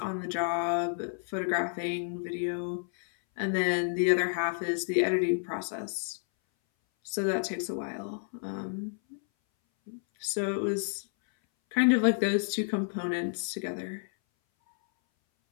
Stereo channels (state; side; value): silent; right; 58 dB below the other